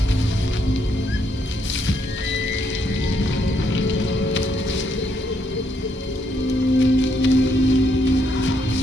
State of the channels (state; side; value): normal; both; correlation 0.74